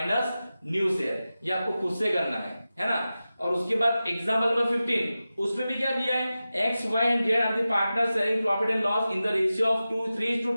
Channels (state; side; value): inverted; both; correlation -0.94